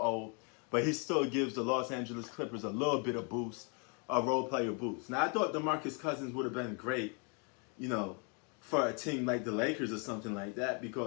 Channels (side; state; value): right; quieter; 36.1 dB